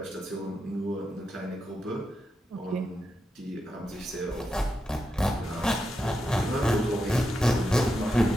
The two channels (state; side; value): normal; both; correlation 0.86